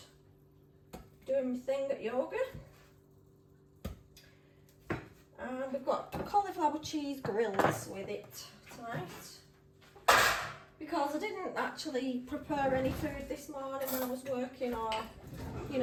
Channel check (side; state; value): both; identical; correlation 1.00